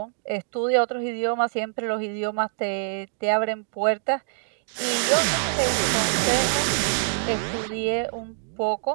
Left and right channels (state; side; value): silent; left; digital silence